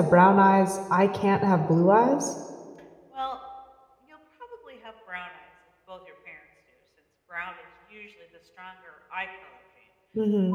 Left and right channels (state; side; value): identical; both; correlation 1.00